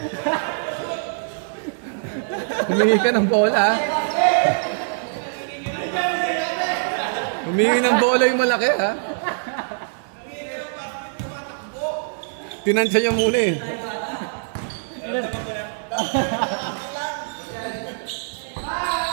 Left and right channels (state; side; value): silent; left; digital silence